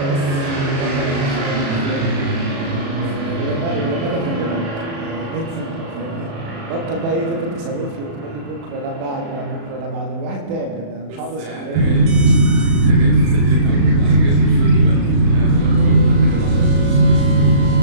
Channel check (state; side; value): late; left; 36 ms